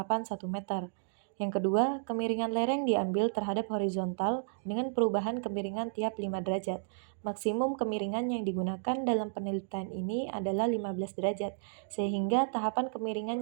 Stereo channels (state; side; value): silent; left; digital silence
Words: 1 meter. Yang kedua, kemiringan lereng diambil terhadap horizontal dengan perubahan kemiringan tiap 5 derajat. Maksimum kemiringan yang digunakan dalam penelitian ini adalah 15 derajat, sehingga tahapan kemiringan